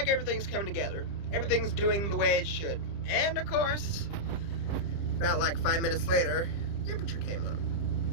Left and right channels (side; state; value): right; late; 30 ms